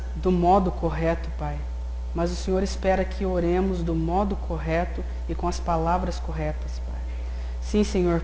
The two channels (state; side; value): identical; both; correlation 1.00